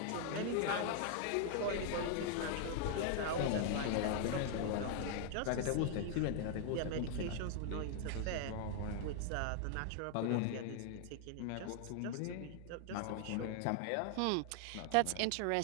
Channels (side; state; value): both; different; correlation 0.00